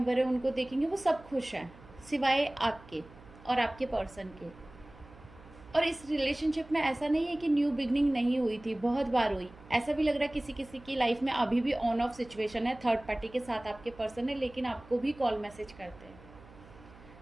हैं उनको देखेंगे, वो सब खुश हैं सिवाय आपके और आपके पर्सन के। और इस रिलेशनशिप में ऐसा नहीं है कि न्यू बिगनिंग नहीं हुई थी, बहुत बार हुई। ऐसा भी लग रहा है किसी किसी की लाइफ में अभी भी ऑन ऑफ सिचुएशन है, थर्ड पार्टी के साथ आपके पर्सन है, लेकिन आपको भी कॉल मैसेज करते हैं,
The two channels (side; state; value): right; noise; hum, 21 dB below the sound